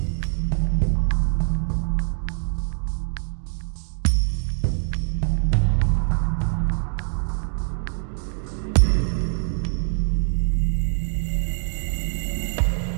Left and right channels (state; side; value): silent; left; digital silence